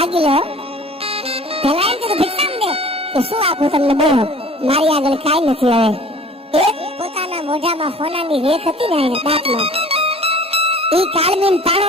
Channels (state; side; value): normal; both; correlation 0.47